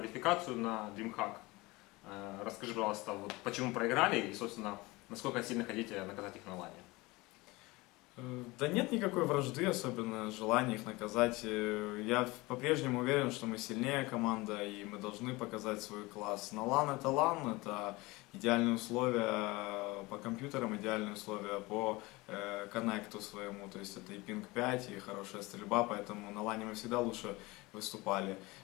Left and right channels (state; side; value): quieter; right; 22.5 dB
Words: на DreamHack. Расскажи, пожалуйста, вот почему проиграли и, собственно, насколько сильно хотите наказать их на лане? Да нет никакой вражды, особенно желания их наказать. Я по-прежнему уверен, что мы сильнее команда и мы должны показать свой класс. На LAN это идеальные условия по компьютерам, идеальные условия по коннекту своему, то есть это и пинг 5, и хорошая стрельба, поэтому на LAN мы всегда лучше выступали,